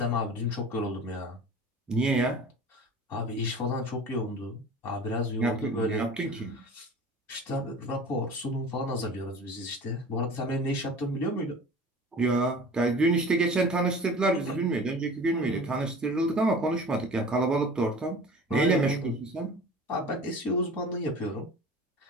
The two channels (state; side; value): normal; both; correlation 0.40